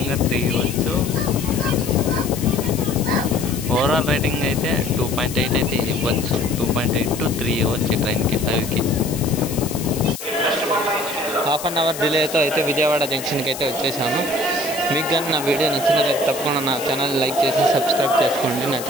3 ఇవ్వచ్చు. ఓవరాల్ రేటింగ్ అయితే 2.8 అయితే ఇవ్వచ్చు. 2.8 to 3 ఇవ్వచ్చు ట్రైన్కి 5కి. హాఫ్ అన్ అవర్ డిలేతో అయితే విజయవాడ జంక్షన్కి అయితే వచ్చేసాను. మీకు కానీ నా వీడియో నచ్చినట్లయితే తప్పకుండా నా ఛానల్ లైక్ చేసి సబ్స్క్రైబ్ చేసుకోండి నా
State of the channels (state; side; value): noise; left; hiss, 10 dB below the sound